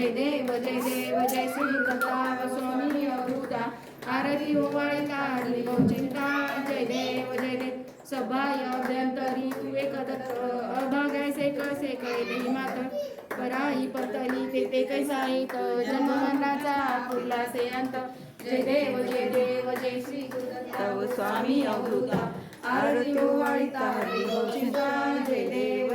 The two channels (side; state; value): both; identical; correlation 1.00